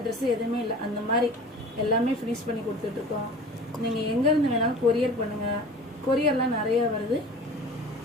ட்ரெஸ்ஸு எதுவுமே இல்லை, அந்த மாதிரி எல்லாமே ஃபினிஷ் பண்ணி கொடுத்துட்ருக்கோம். நீங்கள் எங்கேருந்து வேணாலும் கொரியர் பண்ணுங்கள். கொரியர்லாம் நிறையா வருது.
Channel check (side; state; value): both; normal; correlation 0.41